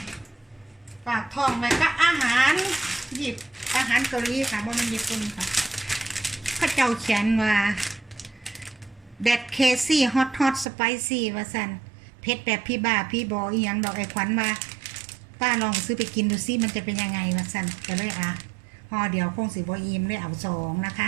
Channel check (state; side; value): drops out; left; at 10.7 s